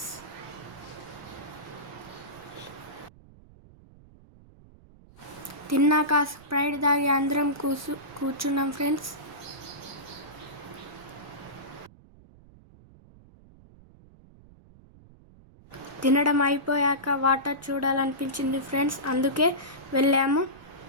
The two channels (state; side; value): noise; right; rumble, 24 dB below the sound